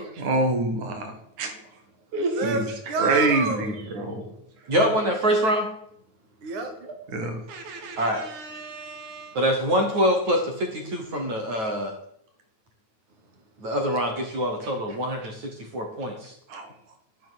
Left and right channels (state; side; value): late; left; 9.2 ms